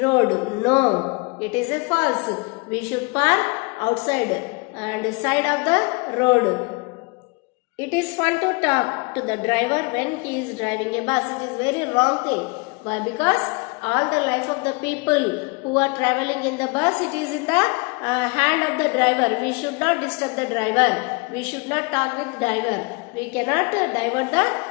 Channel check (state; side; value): quieter; right; 29.3 dB